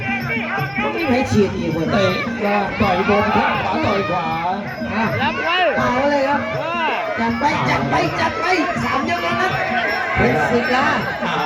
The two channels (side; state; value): both; identical; correlation 1.00